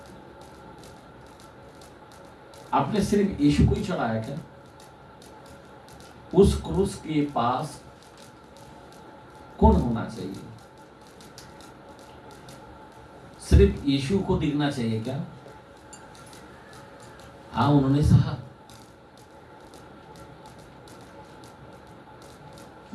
आपने सिर्फ यीशु को ही चढ़ाया क्या? उस क्रूस के पास कौन होना चाहिए? सिर्फ यीशु को दिखना चाहिए क्या? हाँ, उन्होंने सहा।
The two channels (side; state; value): both; identical; correlation 1.00